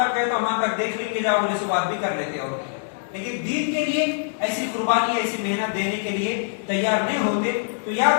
ہے تو وہاں تک دیکھ لیں گے، جاؤ بولے سے بات بھی کر لیتے ہو. لیکن دین کے لیے ایسی قربانی ایسی محنت دینے کے لیے تیار نہیں ہوتے. تو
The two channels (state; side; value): silent; right; digital silence